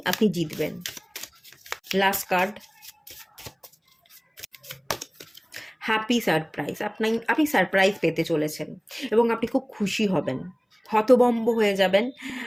আপনি জিতবেন। Last card, happy surprise. আপনি সারপ্রাইজ পেতে চলেছেন এবং আপনি খুব খুশি হবেন, হতভম্ব হয়ে যাবেন,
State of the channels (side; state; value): both; identical; correlation 1.00